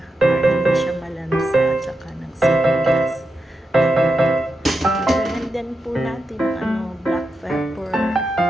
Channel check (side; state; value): both; normal; correlation 0.88